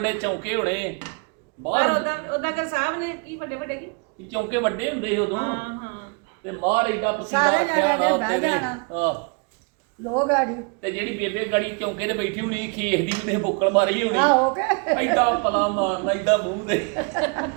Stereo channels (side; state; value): left; quieter; 34.3 dB